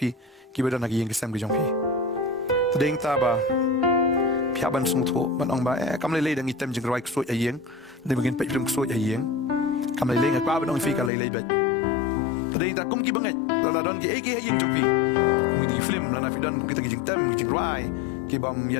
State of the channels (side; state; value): right; drops out; at 11.1 s